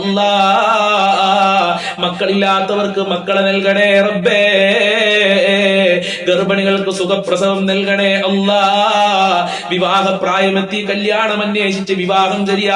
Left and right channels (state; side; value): identical; both; correlation 1.00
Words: മക്കളില്ലാത്തവർക്ക് മക്കളെ നൽകണേ റബ്ബേ. ഗർഭിണികൾക്ക് സുഖപ്രസവം നൽകണേ അല്ലാ. വിവാഹ പ്രായമെത്തി കല്യാണം അന്വേഷിച്ച് വിവാഹം